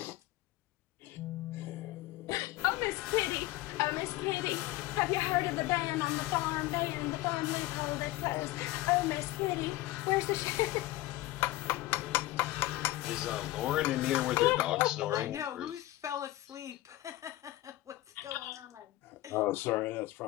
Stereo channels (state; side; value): quieter; right; 17.5 dB